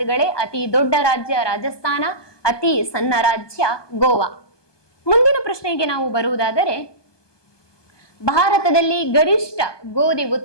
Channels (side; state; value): right; late; 1.2 ms